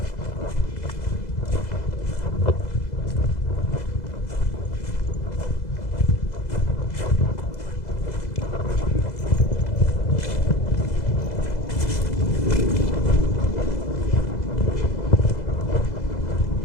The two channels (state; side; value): late; right; 2.0 ms